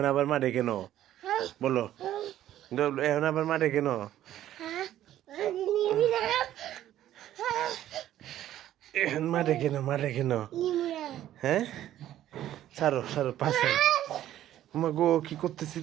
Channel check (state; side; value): quieter; left; 12.5 dB